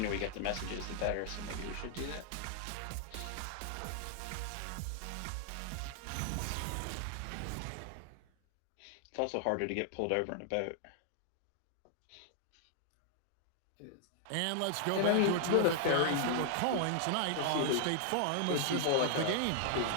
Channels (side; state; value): both; different; correlation 0.00